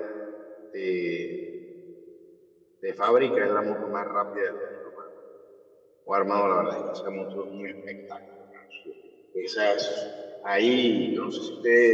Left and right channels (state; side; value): identical; both; correlation 1.00